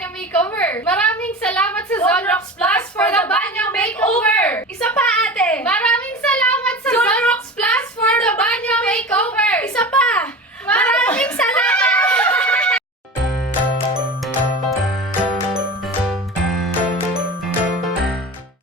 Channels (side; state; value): both; normal; correlation 0.32